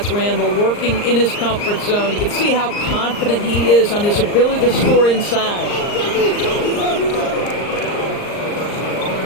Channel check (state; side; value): late; right; 39 ms